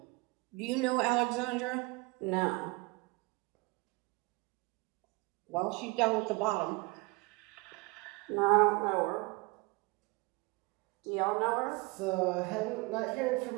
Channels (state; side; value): quieter; left; 25.9 dB